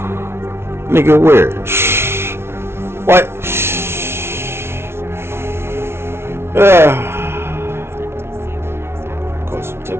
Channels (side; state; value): left; late; 0.12 ms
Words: Nigga, where? What? Cause some